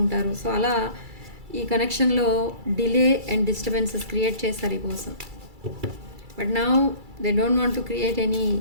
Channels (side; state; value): left; late; 2.3 ms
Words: ఉంటారు. సో అలా ఈ కనెక్షన్లో డిలే అండ్ డిస్టర్బెన్సెస్ క్రియేట్ చేస్తారు ఈ person. But now they don't want to create any